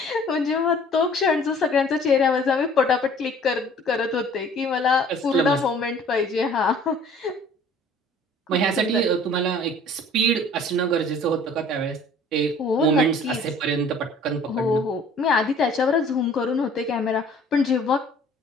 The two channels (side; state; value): both; normal; correlation 0.52